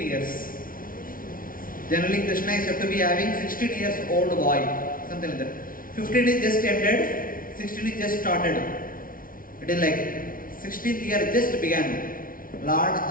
years. Generally Krishna is said to be having 16 years old boy, something like that. 15 is just ended, 16 is just started. It is like 16th year just began. Lord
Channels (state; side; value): late; right; 0.41 ms